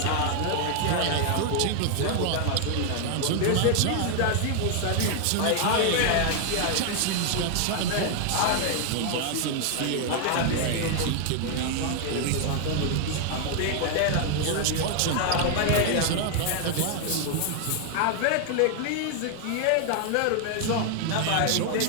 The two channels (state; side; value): different; both; correlation 0.00